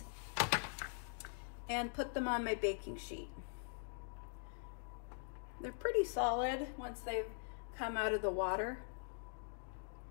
and put them on my baking sheet. They're pretty solid once they've come out of the water.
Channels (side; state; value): right; silent; digital silence